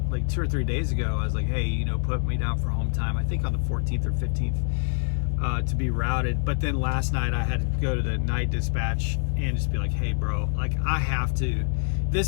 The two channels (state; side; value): silent; right; digital silence